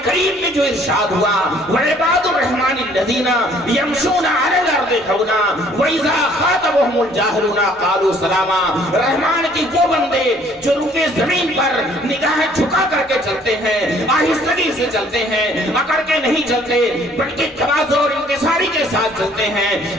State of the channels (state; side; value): normal; both; correlation 0.59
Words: کریم میں جو ارشاد ہوا وَعِبَادُ الرَّحْمَنِ الَّذِينَ يَمْشُونَ عَلَى الْأَرْضِ هَوْنًا وَإِذَا خَاطَبَهُمُ الْجَاهِلُونَ قَالُوا سَلَامًا۔ رحمان کی وہ بندے جو روئے زمین پر نگاہیں جھکا کر کے چلتے ہیں، آہستگی سے چلتے ہیں، اکڑ کے نہیں چلتے بلکہ تواضع اور انکساری کے ساتھ چلتے ہیں۔